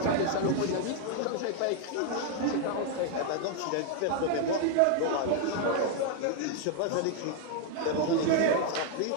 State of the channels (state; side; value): different; both; correlation 0.00